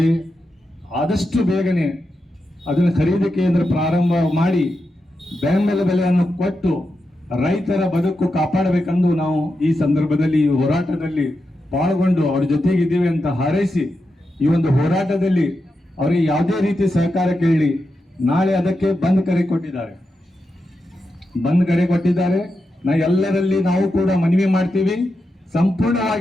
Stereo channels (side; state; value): both; normal; correlation 0.88